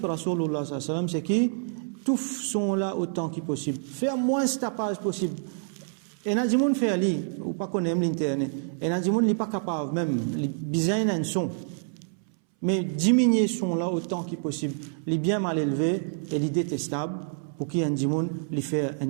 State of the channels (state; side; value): silent; left; 60 dB below the other